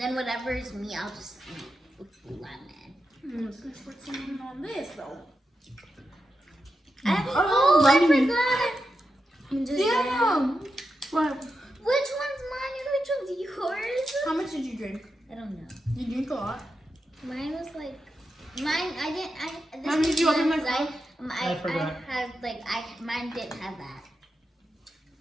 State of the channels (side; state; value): both; normal; correlation 0.88